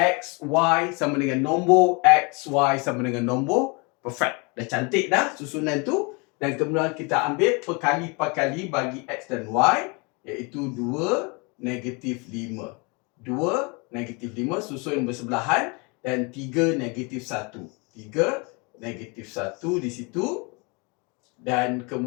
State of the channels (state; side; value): quieter; right; 30.4 dB